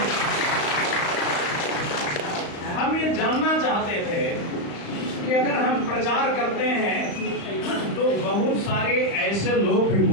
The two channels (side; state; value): right; late; 35 ms